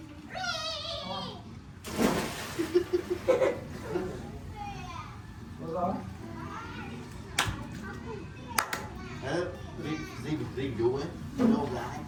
riêng vụ ấy đâu gái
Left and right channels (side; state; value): both; identical; correlation 1.00